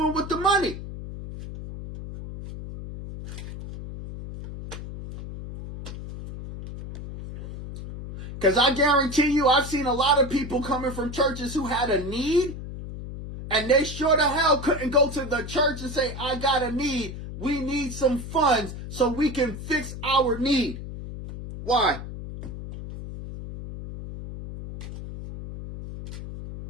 with the money? Because I guarantee you, I've seen a lot of people coming from churches who had a need, And they sure the hell couldn't go to the church and say, I got a need. We need some funds so we can fix our need. Why?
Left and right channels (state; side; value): noise; left; hum, 10 dB below the sound